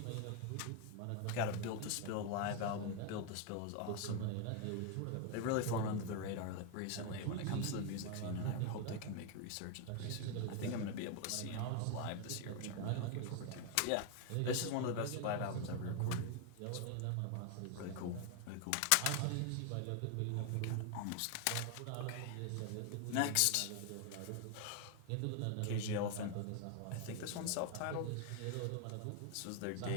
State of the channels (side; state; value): both; different; correlation 0.01